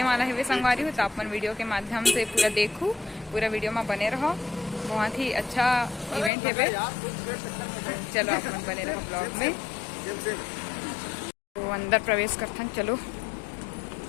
वाला है वे संगवारी हो, तो अपन वीडियो के माध्यम से पूरा देखूँ, पूरा वीडियो में बने रहो। बहुत ही अच्छा इवेंट है वे, चलो अपन बने रहो ब्लॉग में। तो अंदर प्रवेश करते हैं, चलो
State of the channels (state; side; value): drops out; right; at 6.3 s